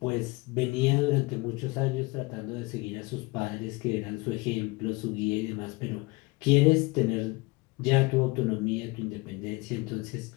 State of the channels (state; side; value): quieter; right; 24.8 dB